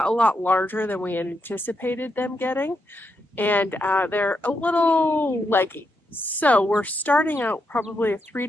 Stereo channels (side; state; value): both; normal; correlation 0.82